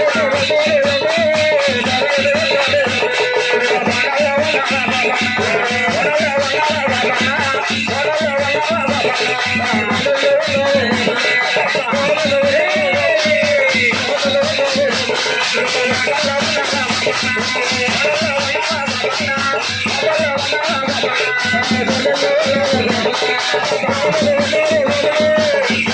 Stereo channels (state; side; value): identical; both; correlation 1.00